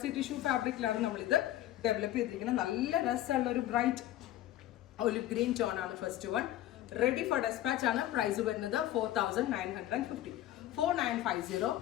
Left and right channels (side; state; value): right; quieter; 13.8 dB